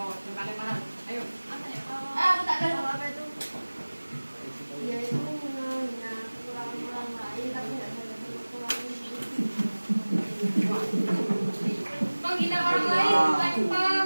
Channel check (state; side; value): inverted; both; correlation -1.00